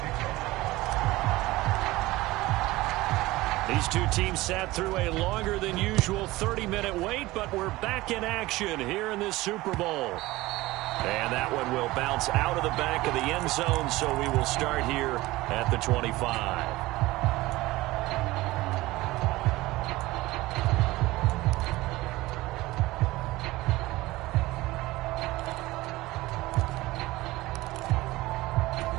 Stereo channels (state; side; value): quieter; left; 19.0 dB